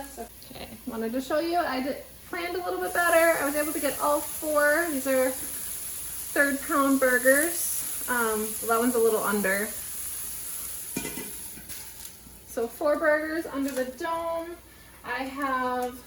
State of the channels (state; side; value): identical; both; correlation 1.00